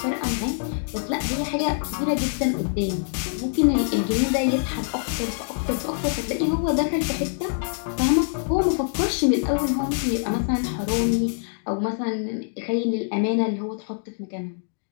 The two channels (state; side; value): silent; right; digital silence